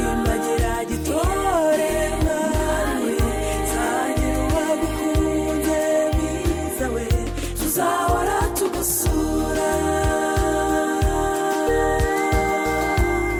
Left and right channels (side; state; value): both; identical; correlation 1.00